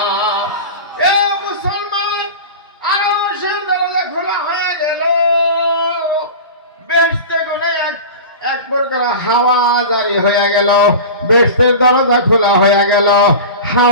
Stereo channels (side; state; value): both; inverted; correlation -0.31